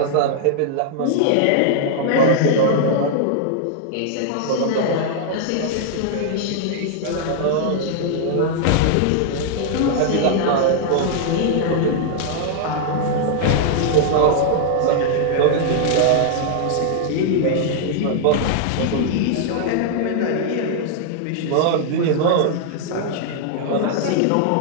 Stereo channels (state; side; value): different; both; correlation -0.01